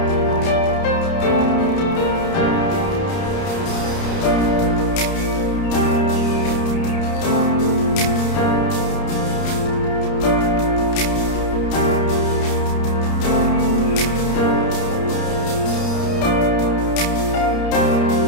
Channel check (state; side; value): late; right; 30 ms